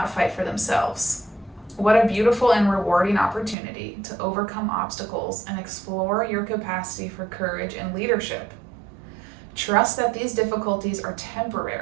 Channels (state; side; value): drops out; left; at 3.6 s